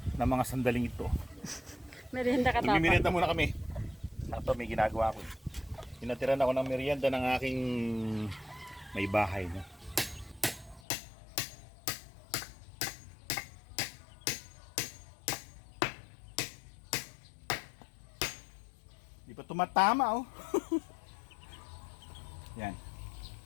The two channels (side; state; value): right; drops out; at 10.8 s